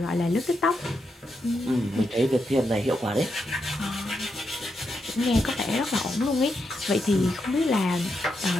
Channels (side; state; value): both; normal; correlation 0.83